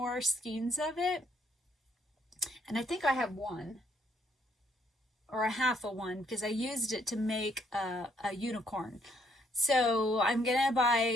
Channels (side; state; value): both; normal; correlation 0.69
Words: skeins of it. And I think I have 1. Or a half of one, because I used it to make a unicorn. So I'm going to